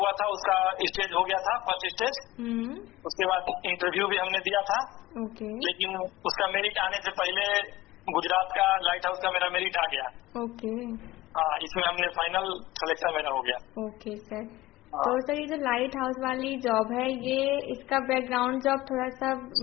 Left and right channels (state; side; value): quieter; right; 17.8 dB